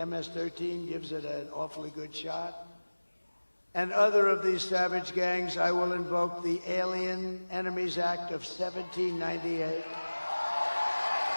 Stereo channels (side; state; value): both; inverted; correlation -1.00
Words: gives it an awfully good shot. And other of these savage gangs, I will invoke the Alien Enemies Act of 1798.